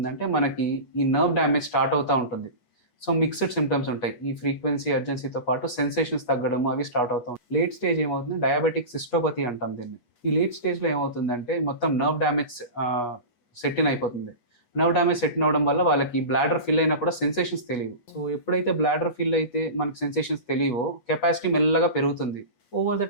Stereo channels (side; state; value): right; late; 8.3 ms